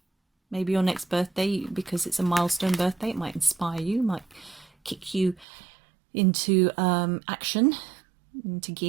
maybe your next birthday, because it's a milestone birthday, it might inspire you, might kick you into action, into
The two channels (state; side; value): drops out; left; at 5.5 s